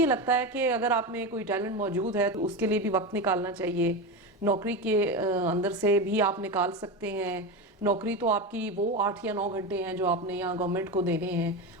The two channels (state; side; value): normal; both; correlation 0.19